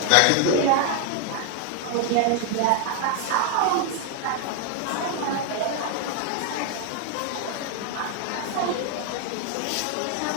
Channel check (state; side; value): different; both; correlation 0.00